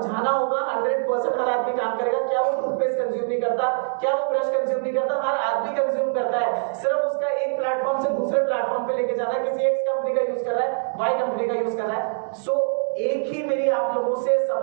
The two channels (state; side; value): silent; left; digital silence